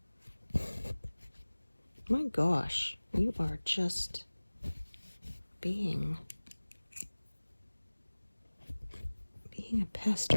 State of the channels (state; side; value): inverted; both; correlation -1.00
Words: My gosh, you are just being a pest,